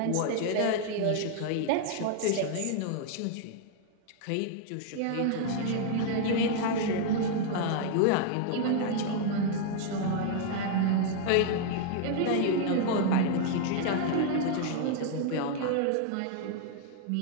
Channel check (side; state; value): both; different; correlation 0.00